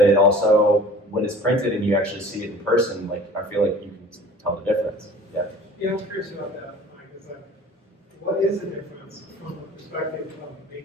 it also, when it's printed and you actually see it in person, like, I feel like you can tell the difference. Yeah. Yeah, I'm curious about that, Mike. Is like, what is the difference from the perspective of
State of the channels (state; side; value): normal; both; correlation 0.45